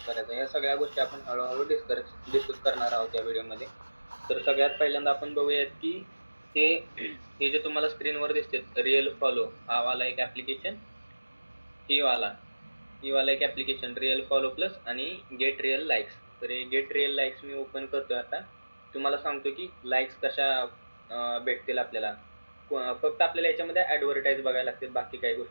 करायचा, या सगळ्या गोष्टी आपण हळूहळू डिस्कस करणार आहोत या व्हिडिओमध्ये. तर सगळ्यात पहिल्यांदा आपण बघूयात की हे हे जे तुम्हाला स्क्रीनवर दिसते रिअल फॉलो, हा वाला एक ॲप्लिकेशन, ही वाला एक ॲप्लिकेशन रिअल फॉलो प्लस आणि गेट रिअल लाईक्स. तर हे गेट रिअल लाईक्स मी ओपन करतोय आता. तुम्हाला सांगतो की लाईक्स कशा भेटतील आपल्याला. फक्त आपल्याला याच्यामध्ये ॲडव्हर्टाइज बघायला लागतील, बाकी काही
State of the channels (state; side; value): inverted; both; correlation -1.00